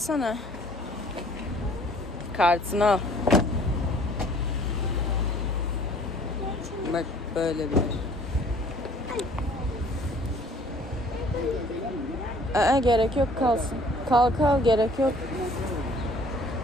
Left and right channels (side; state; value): both; normal; correlation 0.55